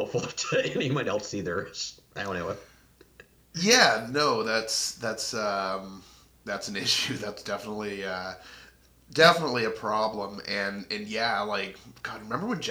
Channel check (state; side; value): identical; both; correlation 1.00